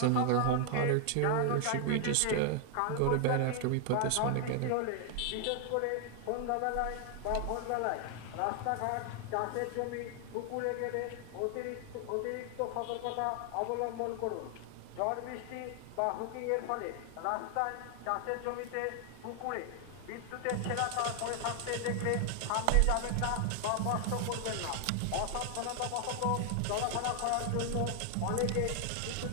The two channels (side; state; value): both; different; correlation 0.00